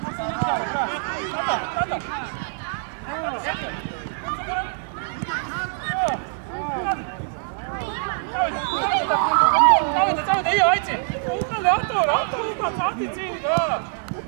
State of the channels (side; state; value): left; silent; digital silence